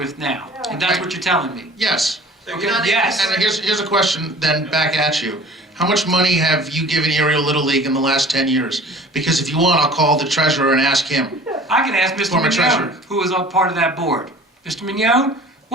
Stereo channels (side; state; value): both; normal; correlation 0.46